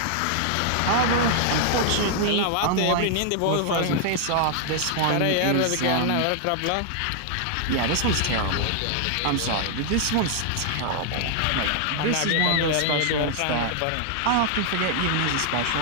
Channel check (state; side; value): different; both; correlation 0.00